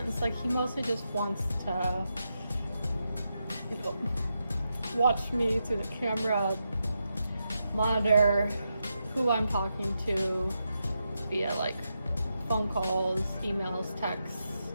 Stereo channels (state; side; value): inverted; both; correlation -0.86